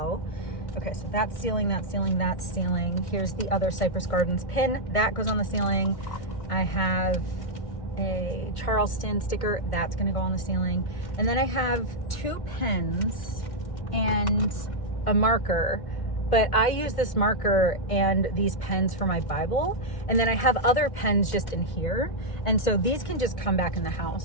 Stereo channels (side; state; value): right; late; 1.6 ms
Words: Okay, so that's ceiling, that's ceiling, that's ceiling. Here's the other Cypress Gardens pin. That goes on the ceiling. I have a Charleston sticker. That's gonna go on the ceiling. And then I have 2 pens and a marker. But I use this marker and these pens for my Bible. And then I have other pens just in here. And so these can just come back in the